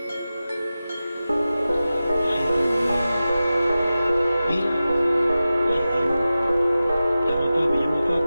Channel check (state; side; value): inverted; both; correlation -0.94